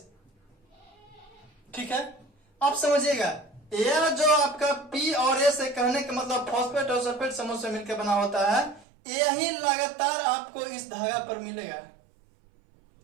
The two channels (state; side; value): drops out; left; at 8.8 s